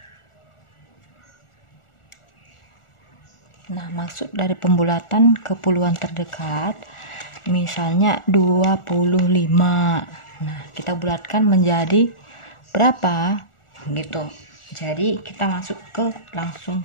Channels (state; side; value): late; right; 1.4 ms